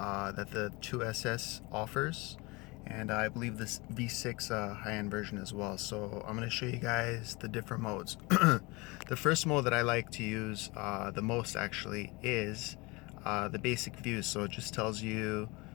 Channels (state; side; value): quieter; right; 25.4 dB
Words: the 2SS offers, and I believe this V6 high-end version as well. So I'm going to show you guys the different modes. The first mode that I like to use the most actually is the basic view. So it just tells you